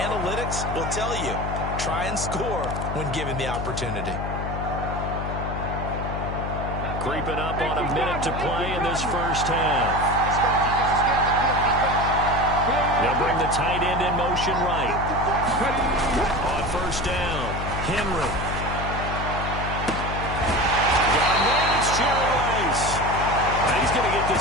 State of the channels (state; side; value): noise; left; hum, 4 dB below the sound